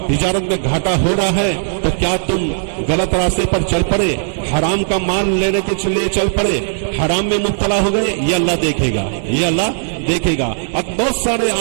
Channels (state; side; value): silent; left; 69 dB below the other